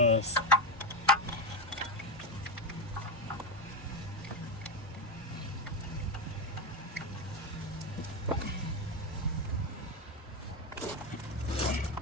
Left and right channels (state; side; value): normal; both; correlation 0.11